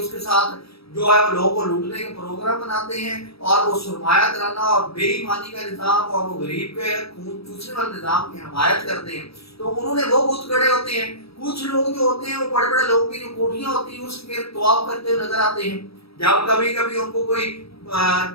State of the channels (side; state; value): right; late; 0.77 ms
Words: उसके साथ जो है वो लोगों को लूटने के प्रोग्राम बनाते हैं और वो सुरमाया कराना और बेईमानी का निज़ाम और वो गरीब के खून चूसने वाले निज़ाम की हमायत करते हैं। तो उन्होंने वो बुत गड़े होते हैं। कुछ लोग जो होते हैं वो बड़े बड़े लोगों की जो कोठियां होती हैं उसके तवाफ करते हुए नजर आते हैं। जब कभी कभी उनको कोई